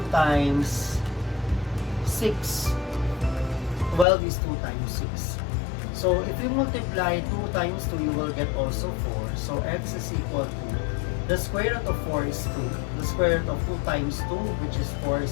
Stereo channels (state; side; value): drops out; right; at 4.0 s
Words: times 6. 12 is 2 times 6. So if you multiply 2 times 2, you will get also 4. So x is equal to, the square root of 4 is 2. The square root of 2 times 2, which is 4,